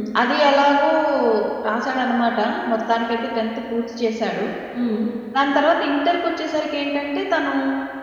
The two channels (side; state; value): both; identical; correlation 1.00